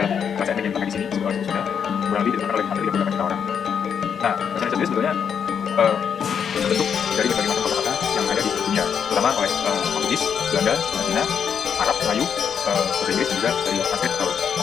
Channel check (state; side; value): quieter; right; 7.4 dB